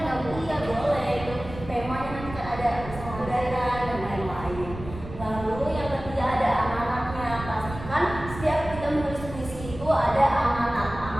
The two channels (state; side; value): noise; right; rumble, 12 dB below the sound